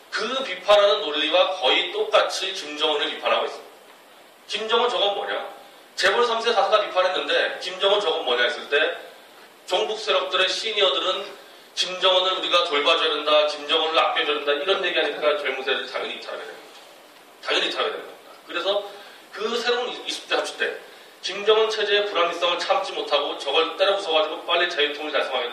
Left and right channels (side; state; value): both; identical; correlation 1.00